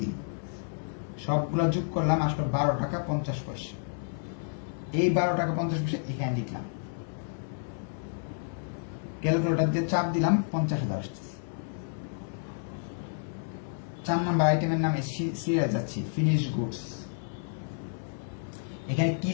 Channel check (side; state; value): right; silent; 57 dB below the other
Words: সবগুলো যোগ করলাম, আসলে 12 টাকা 50 পয়সা। এই 12 টাকা 50 পয়সা এখানে লিখলাম, ক্যালকুলেটর দিয়ে চাপ দিলাম, 50,000 আসতেছে। 4 নম্বর আইটেমের নামে সিরিয়াল যাচ্ছি, ফিনিশ গুডস। এখানে কি